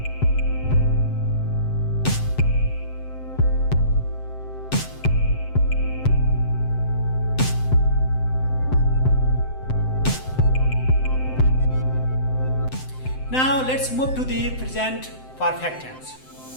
Now let's move to the present perfect tense.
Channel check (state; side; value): late; right; 7.7 ms